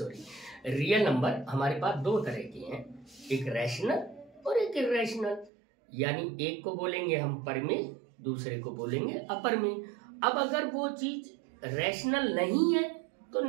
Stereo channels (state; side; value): drops out; left; at 5.5 s